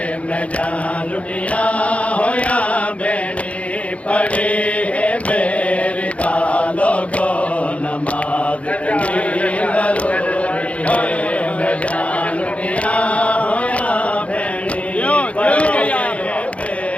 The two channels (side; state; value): right; late; 0.064 ms